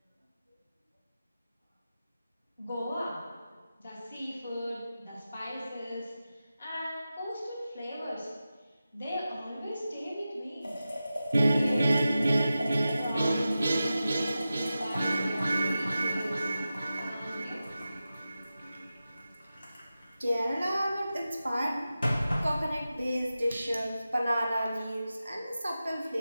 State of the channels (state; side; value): inverted; both; correlation -0.93